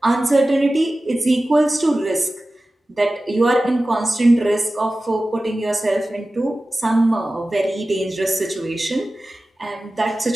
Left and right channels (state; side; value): normal; both; correlation 0.96